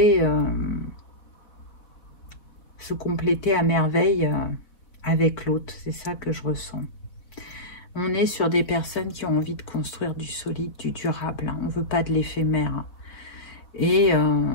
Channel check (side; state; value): right; late; 4.3 ms